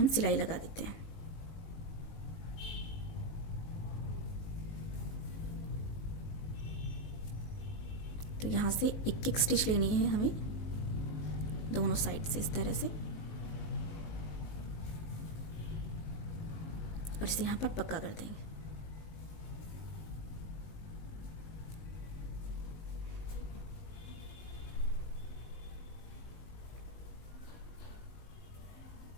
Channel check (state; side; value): late; right; 19 ms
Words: सिलाई लगा देते हैं। तो यहाँ से एक एक स्टिच लेनी है हमें दोनों साइड से इस तरह से और इसे यहाँ पर पक्का कर देंगे।